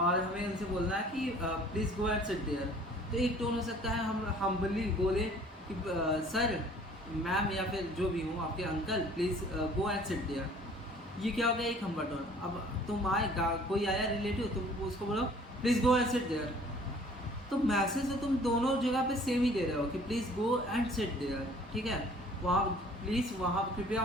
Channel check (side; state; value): both; normal; correlation 0.53